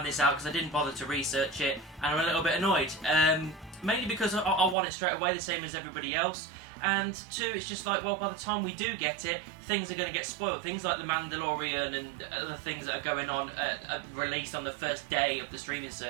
this out because I didn't bother to research it, and I'm a little bit annoyed. Mainly because I want it straight away, the same as everybody else, and two, it's just like, well, by the time we do get it, things are going to get spoiled. Things like The Mandalorian and other things that are going on, released on the first day of the streaming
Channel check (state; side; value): drops out; left; at 4.8 s